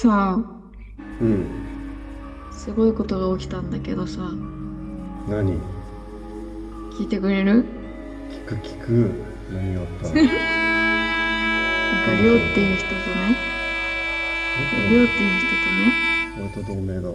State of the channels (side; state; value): both; identical; correlation 1.00